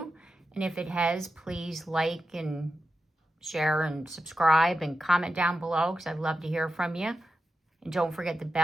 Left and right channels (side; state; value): both; normal; correlation 0.90